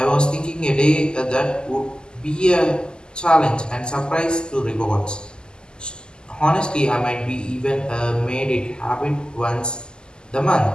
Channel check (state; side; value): late; right; 0.046 ms